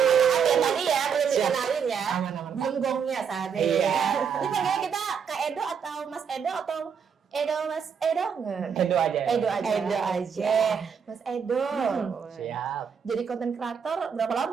Tadi ya, belum dikenalin ya. Belum gongnya saat ini ya. Ini panggilnya kita Kak Edo atau Mas Edo atau Edo Mas Edo nggak? Edo aja. Edo aja. Edo aja. Mas Edo. Siap. Jadi konten kreator berapa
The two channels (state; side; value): quieter; left; 6.9 dB